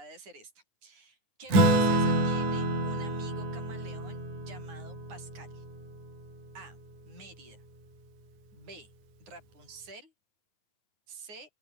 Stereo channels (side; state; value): left; late; 9.4 ms